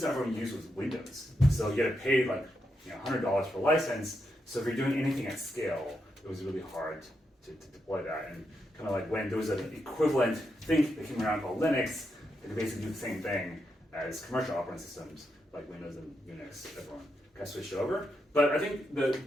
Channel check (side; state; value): both; normal; correlation 0.83